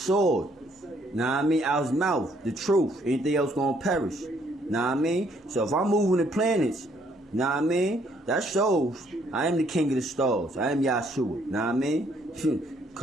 Know what I mean? Out his mouth, the truth. Anything else gonna perish. Know what I mean? So if I'm moving the planets, know what I mean? That shows I am the king of the stars. I am Yahshua. Know what I mean?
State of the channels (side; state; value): both; normal; correlation 0.67